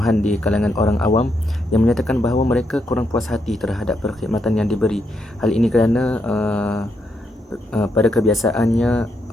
di kalangan orang awam yang menyatakan bahawa mereka kurang puas hati terhadap perkhidmatan yang diberi. Hal ini kerana pada kebiasaannya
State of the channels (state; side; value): normal; both; correlation 0.79